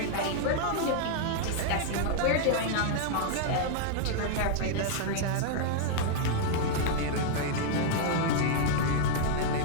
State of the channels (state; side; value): different; both; correlation -0.01